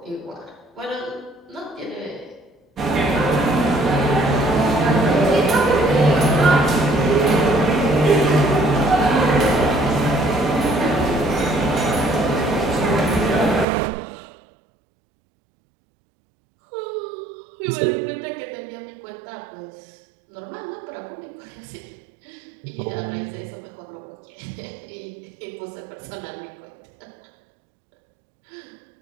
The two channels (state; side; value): drops out; left; at 13.7 s